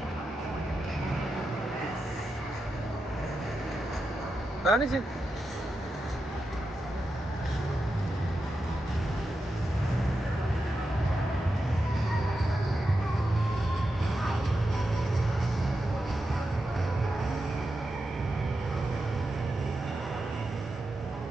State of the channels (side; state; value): both; normal; correlation 0.89